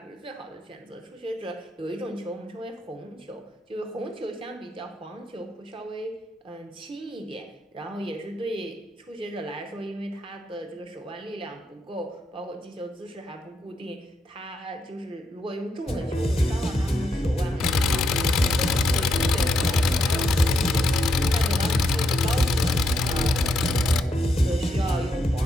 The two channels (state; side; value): normal; both; correlation 0.79